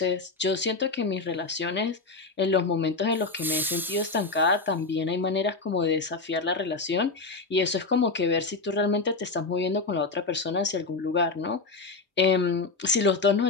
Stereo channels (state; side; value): quieter; right; 3.8 dB